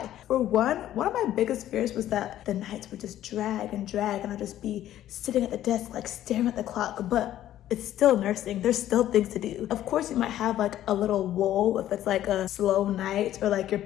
For one of my biggest fears was that the nights would just drag and I'd just be sitting at the desk like staring at the clock. But it's still nursing. There's still things to do. Of course, you might have like a little lull if it's like a slow night or like your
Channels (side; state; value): right; quieter; 12.6 dB